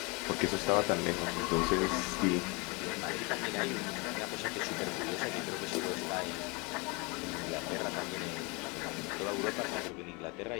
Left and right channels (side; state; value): right; quieter; 28.9 dB